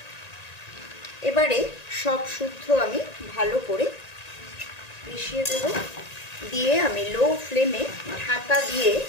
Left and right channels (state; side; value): late; right; 1.9 ms